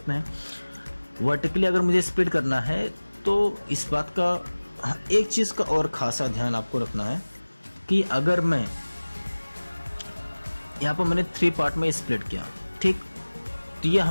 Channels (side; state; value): both; inverted; correlation -1.00